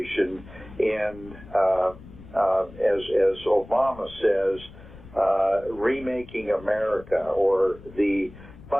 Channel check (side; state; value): left; noise; rumble, 19 dB below the sound